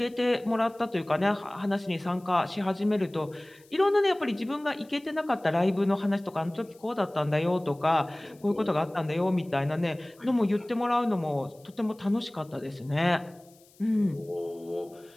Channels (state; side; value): noise; left; hiss, 29 dB below the sound